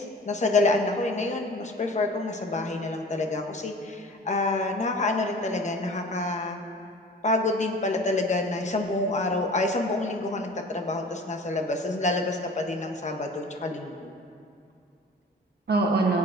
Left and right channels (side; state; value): both; normal; correlation 0.42